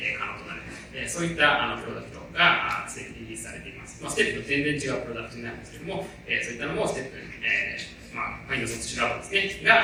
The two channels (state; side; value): identical; both; correlation 1.00